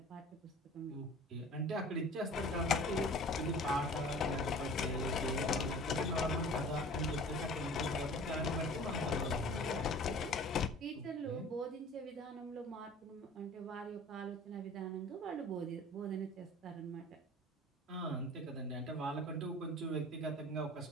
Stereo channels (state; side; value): normal; both; correlation 0.43